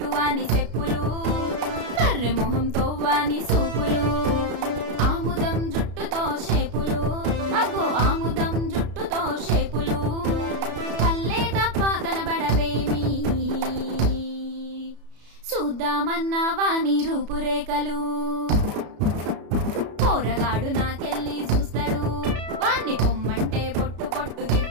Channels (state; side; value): late; left; 33 ms